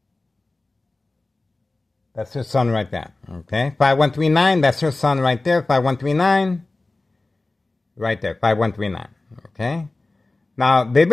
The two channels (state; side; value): quieter; right; 3.1 dB